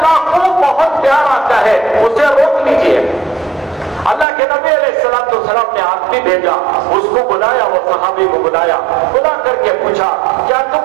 کو بہت پیار آتا ہے, اسے روک لیجئے. اللہ کے نبی علیہ السلام نے آدمی بھیجا, اس کو بلایا, وہ صحابی کو بلایا, بلا کر کے پوچھا کیا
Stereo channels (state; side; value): drops out; left; at 4.2 s